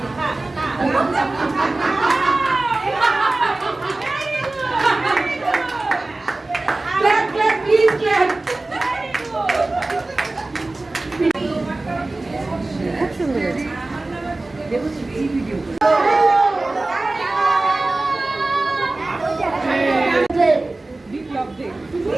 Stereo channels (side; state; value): left; quieter; 3.0 dB